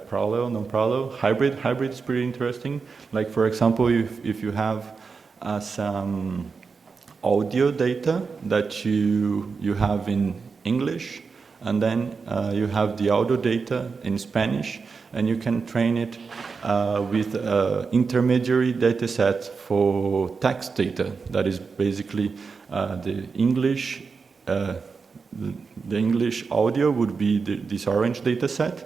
parallel, non-parallel, hybrid. Hybrid is pretty interesting. Like, for example, if you have some audio data that you have in English, and then you have the audio data in Spanish, and you can train it with intermediary data set for text data. That is basically the English audio would be this orange data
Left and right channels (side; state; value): left; quieter; 5.0 dB